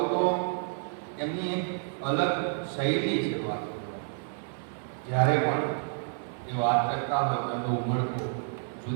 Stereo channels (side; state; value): left; silent; 55 dB below the other